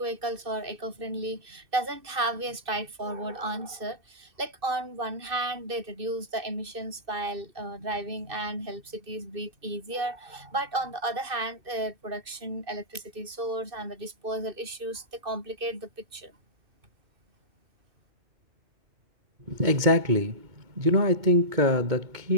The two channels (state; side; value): late; left; 2.6 ms